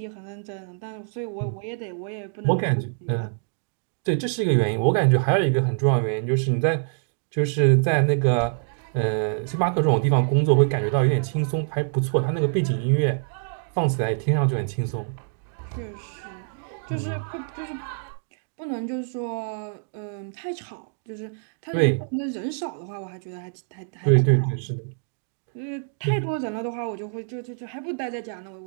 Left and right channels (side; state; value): left; silent; digital silence